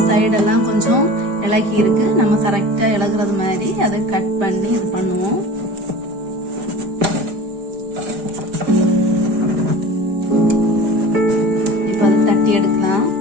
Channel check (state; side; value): late; left; 4.9 ms